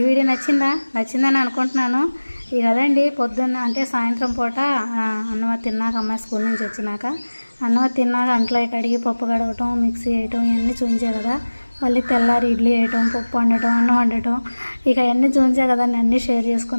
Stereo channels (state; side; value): inverted; both; correlation -1.00